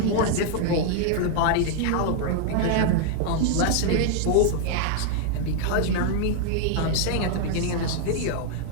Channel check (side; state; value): both; different; correlation 0.00